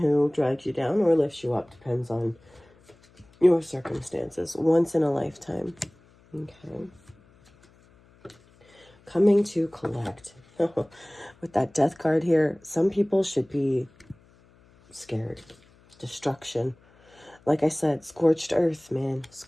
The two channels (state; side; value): noise; left; hum, 29 dB below the sound